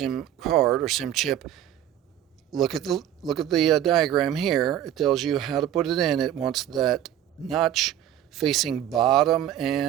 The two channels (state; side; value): quieter; left; 11.2 dB